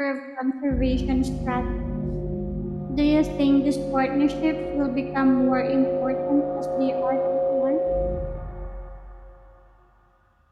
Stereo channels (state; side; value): identical; both; correlation 1.00